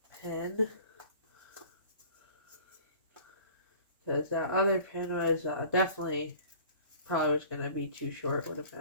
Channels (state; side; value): inverted; both; correlation -0.47